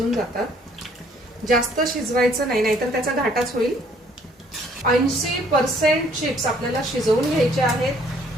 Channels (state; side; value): normal; both; correlation 0.62